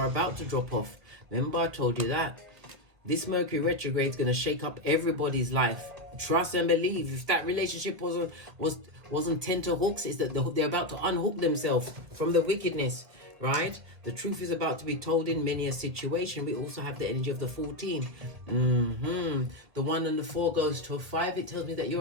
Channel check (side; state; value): left; late; 1.6 ms